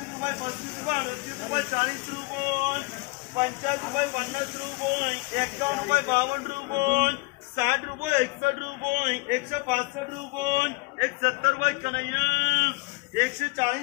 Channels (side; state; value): right; quieter; 26.0 dB